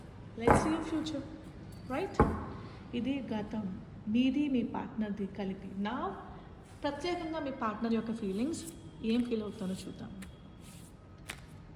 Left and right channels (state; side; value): identical; both; correlation 1.00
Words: Let's see future, right? ఇది గతం, మీది మీ పార్ట్నర్ది కలిపి. నా ప్రత్యేకంగా మీ పార్ట్నర్ యొక్క ఫీలింగ్స్ ఏం ఫీల్ అవుతానో చూద్దాం.